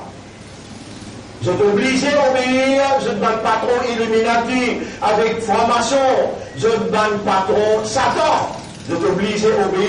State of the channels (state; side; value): identical; both; correlation 1.00